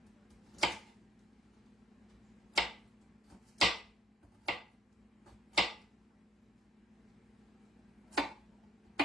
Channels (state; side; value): normal; both; correlation 0.62